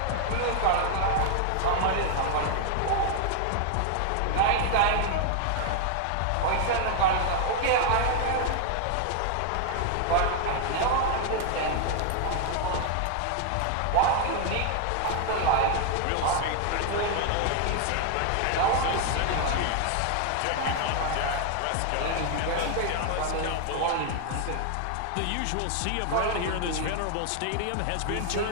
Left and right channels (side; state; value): both; different; correlation 0.00